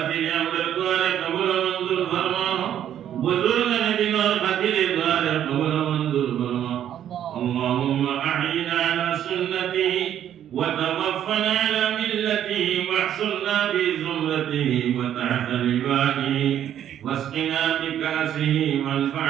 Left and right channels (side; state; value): left; quieter; 10.5 dB